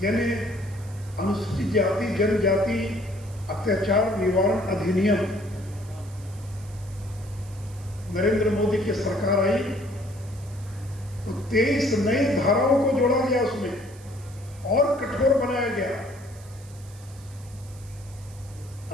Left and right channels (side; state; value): right; noise; hiss, 23 dB below the sound